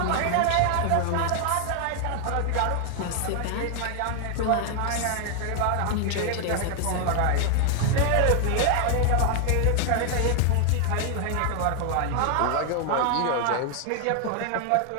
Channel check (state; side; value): different; both; correlation 0.00